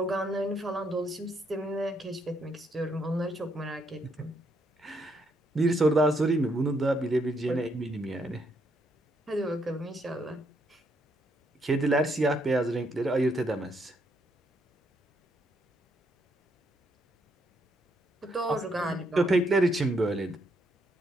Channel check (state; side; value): normal; both; correlation 0.74